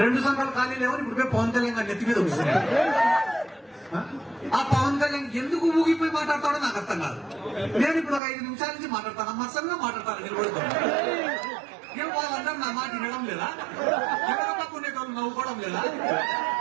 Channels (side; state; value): left; drops out; at 8.2 s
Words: రెండు సంఘాలు ఖాళీ లేవని ఇప్పుడు పోయి పవన్ కళ్యాణ్ గారి నెత్తి మీద వస్తున్నాయి. ఆ పవన్ కళ్యాణ్ ఎందుకు ఊగిపోయి మాట్లాడతాడో నాకు అర్థం కాదు. నేను ఇప్పుడు ఒక 5 నిమిషాల నుంచి మాట్లాడతాను, మత్సంగా మాట్లాడతాను, నిలబడుతాను. ఏం వాళ్ళందరూ నా మాట వినడం లేదా? ఎవరి పక్క ఉండేటోళ్ళు నవ్వుకోవడం లేదా?